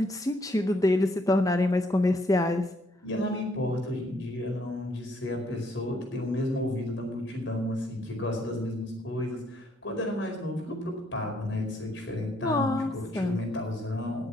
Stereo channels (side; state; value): both; normal; correlation 0.69